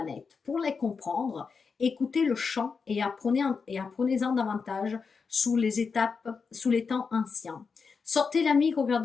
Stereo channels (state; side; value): quieter; right; 5.3 dB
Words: Pour les comprendre, écoutez le chant et apprenez-en davantage sous les temps anciens. Sortez l'ami,